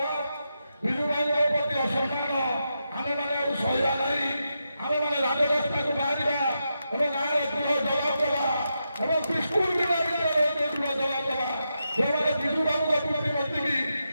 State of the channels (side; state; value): both; inverted; correlation -0.86